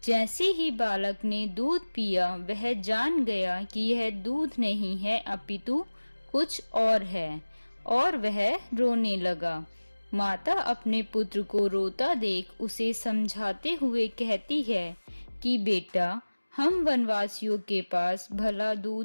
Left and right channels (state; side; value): inverted; both; correlation -1.00